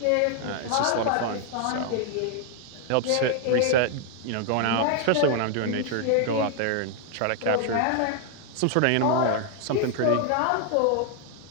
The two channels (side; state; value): both; different; correlation 0.00